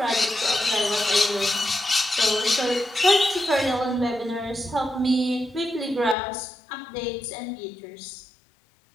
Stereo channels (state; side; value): drops out; right; at 6.2 s